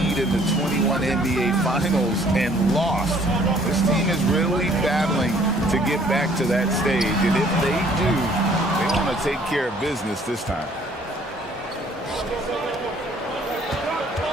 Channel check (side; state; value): both; normal; correlation 0.59